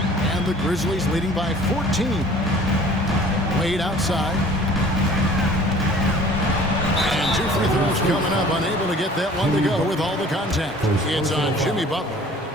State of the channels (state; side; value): normal; both; correlation 0.49